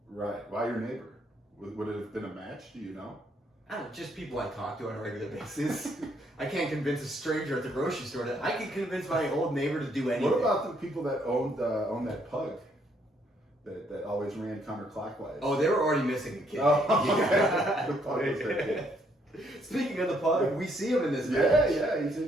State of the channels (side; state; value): both; normal; correlation 0.70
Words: Right. Why your neighbor? Would it have been a match? Do you know? I don't know, just people I talk to on a regular basis. I can't convince a stranger at the grocery store that I can convince my old neighbor to do anything. What about the people that own that pug that always ran counterclockwise? Oh, they were already missing a kid. Oh, okay. The pug was their kid. Speaking of the pug, we see him in this match. Yeah, he's